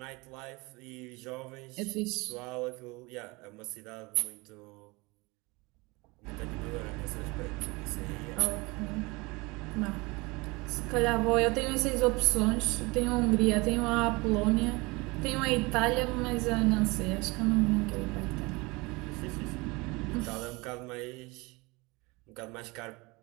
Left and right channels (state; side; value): quieter; left; 25.1 dB